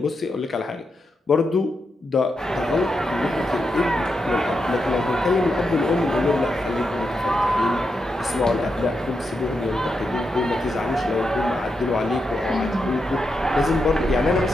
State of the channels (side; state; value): both; normal; correlation 0.85